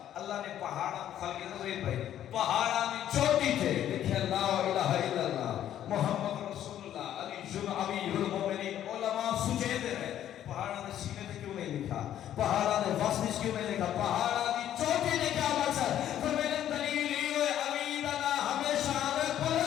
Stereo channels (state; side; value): quieter; right; 11.2 dB